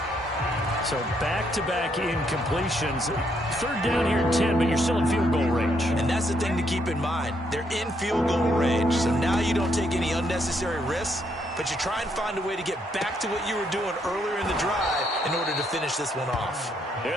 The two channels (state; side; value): normal; both; correlation 0.74